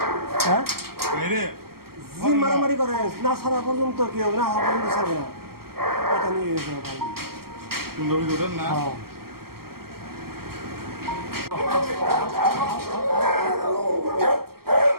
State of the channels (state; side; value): late; left; 0.94 ms